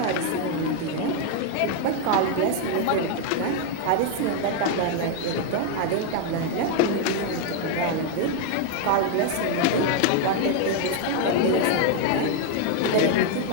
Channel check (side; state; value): both; different; correlation 0.01